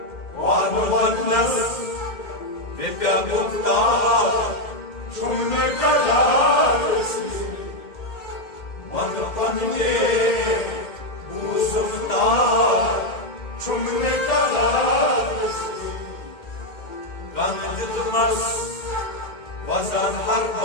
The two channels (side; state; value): right; late; 2.1 ms